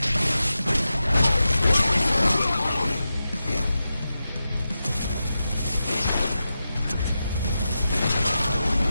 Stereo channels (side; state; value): both; inverted; correlation -0.91